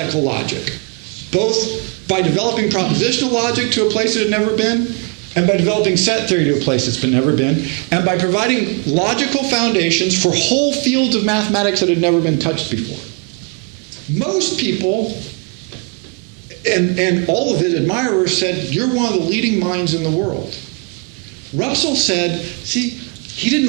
logic, both by developing propositional logic to a place it had never been, and by developing set theory to a place it's never been, and by providing logical foundations for whole fields of mathematics that had never been touched before. Most people, and all of his admirers, said, you're one of the leading minds in the world. Russell said, see, he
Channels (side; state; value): left; quieter; 35.3 dB